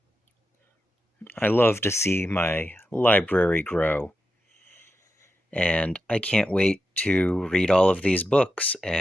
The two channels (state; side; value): normal; both; correlation 0.88